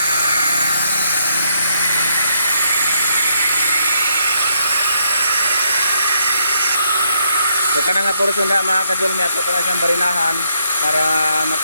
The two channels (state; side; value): inverted; both; correlation -0.75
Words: So kanang nga portion na mga kadulmi, ato pa na siyang barinahan para